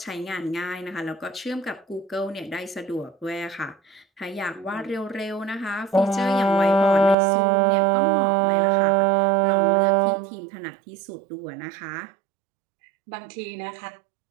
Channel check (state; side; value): drops out; left; at 7.2 s